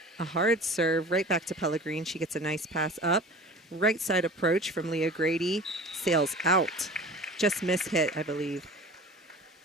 A hard serve right back to Pellegrin. She gets a nice pass up. Right side approach from Leah Grady. Sails out. Just mishit, I believe.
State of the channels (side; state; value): both; normal; correlation 0.40